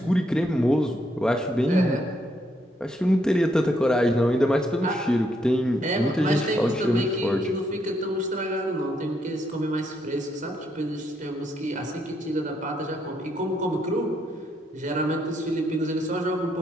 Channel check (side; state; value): both; normal; correlation 0.75